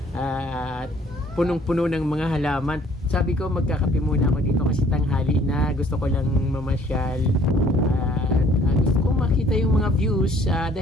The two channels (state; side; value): normal; both; correlation 0.59